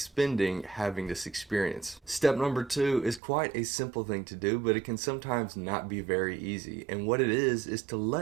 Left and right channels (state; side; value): drops out; left; at 3.2 s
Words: having this experience. Step number 2 is quite a simple thing to do, but it can sometimes not be very easy. And what it is to